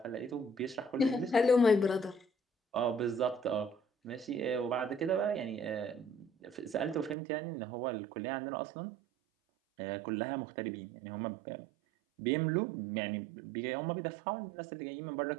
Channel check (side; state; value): left; drops out; at 7.2 s